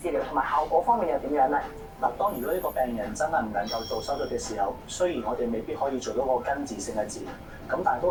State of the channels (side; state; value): both; identical; correlation 1.00